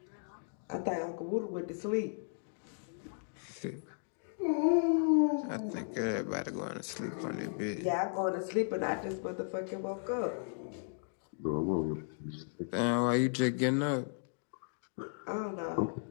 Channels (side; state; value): right; silent; digital silence